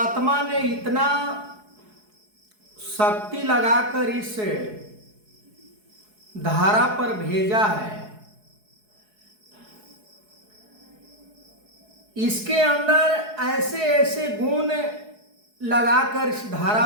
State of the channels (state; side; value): late; left; 4.7 ms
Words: ने इतना शक्ति लगाकर इस धारा पर भेजा है, इसके अंदर ऐसे ऐसे गुण लगाकर इस धारा